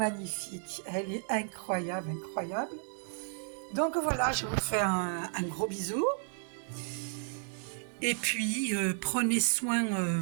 elle est incroyable, incroyable. Donc voilà, je vous fais un gros bisou. Et puis, prenez soin de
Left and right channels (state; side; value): silent; left; 56 dB below the other